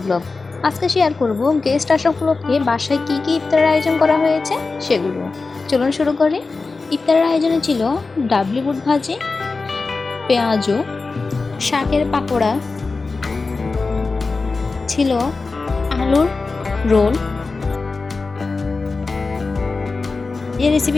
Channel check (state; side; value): quieter; right; 4.0 dB